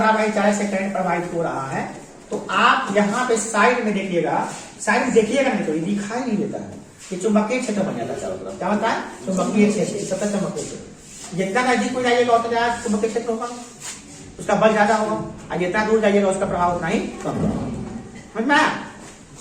चालक से करंट प्रवाहित हो रहा है तो आप यहाँ पे साइड में देखिएगा, साइड में देखिएगा नहीं तो ये दिखाई नहीं देता है, ये चुंबकीय क्षेत्र बन जाता है चारों तरफ। क्या होता है? चुंबकीय क्षेत्र, सतत चुंबकीय क्षेत्र। जितना नजदीक हो जाइएगा उतना ज्यादा चुंबकीय क्षेत्र होगा, उसका बल ज्यादा होगा, और जितना दूर जाइएगा उसका प्रभाव उतना ही कम होगा। समझ में आया?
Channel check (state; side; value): identical; both; correlation 1.00